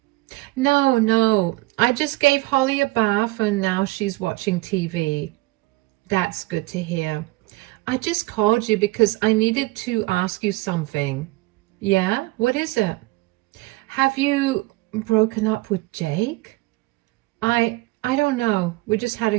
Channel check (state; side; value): quieter; left; 21.7 dB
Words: No, I just gave Holly a bath and now she's watching TV. That's good to hear. I just called you because I needed to ask you something. Yeah? What is it? Have you broken up with Jake? I don't know. We just had a